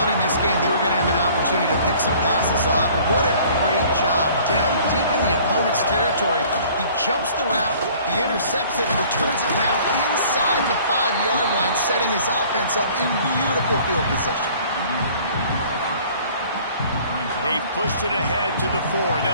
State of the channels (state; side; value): inverted; both; correlation -0.52